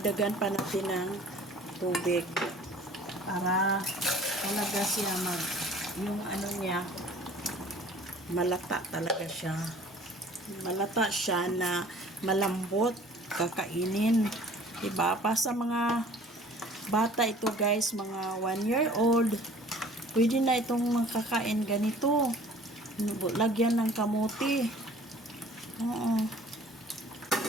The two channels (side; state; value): both; normal; correlation 0.50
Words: pa natin ng tubig para talaga siya yung ano niya malata talaga siya. Malata siya na malambot kakainin, diba? Pa sa mga bata ito guys, mga 1 year old, pwede na itong makakain ganito. Lagyan ng kamuti.